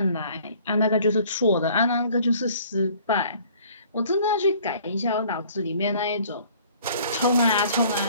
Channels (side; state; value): both; inverted; correlation -0.55